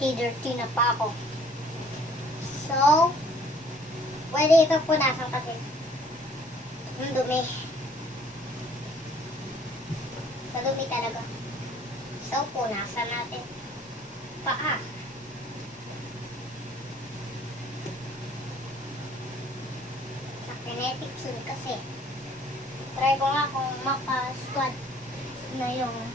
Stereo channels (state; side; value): normal; both; correlation 0.57